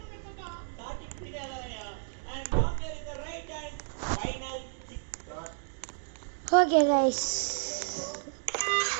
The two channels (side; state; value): left; silent; digital silence